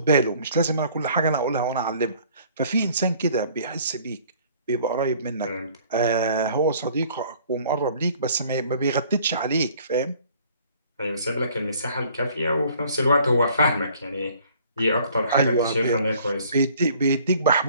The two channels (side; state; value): both; inverted; correlation -0.56